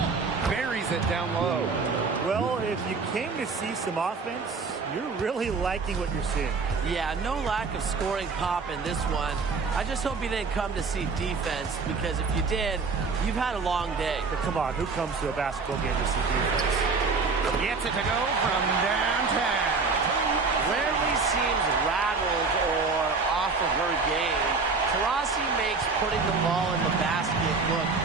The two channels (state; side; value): quieter; left; 4.5 dB